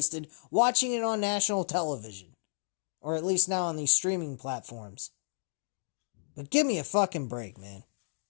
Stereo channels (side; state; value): right; silent; digital silence